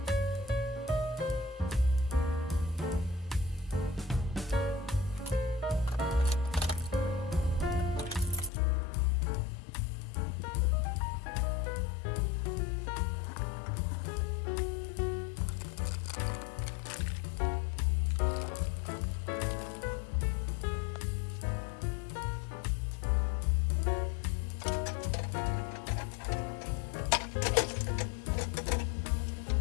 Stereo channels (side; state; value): right; drops out; at 8.5 s